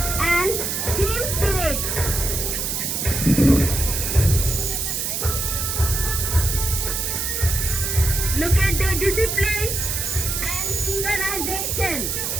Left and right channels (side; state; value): right; noise; hiss, 1 dB below the sound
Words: and team spirit. Look at their discipline and synchronization.